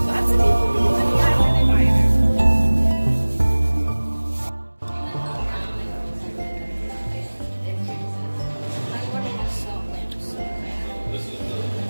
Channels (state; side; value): inverted; both; correlation -1.00